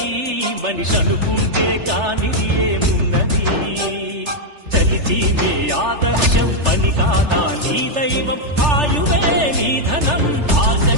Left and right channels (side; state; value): left; late; 3.3 ms